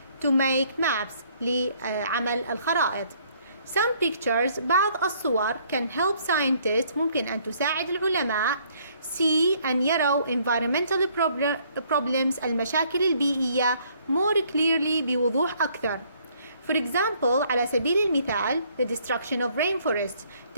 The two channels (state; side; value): inverted; both; correlation -0.64